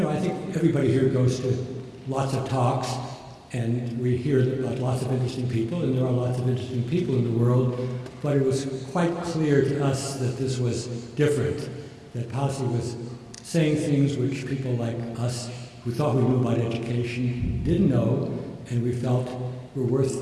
know, I think everybody here goes to lots of talks, and we hear about lots of interesting people, and there are lots of interesting people in the world, but it was quite clear to us that this was different, that Pasi was saying things which people like us who thought we knew about education didn't know, and we felt were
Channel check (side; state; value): both; identical; correlation 1.00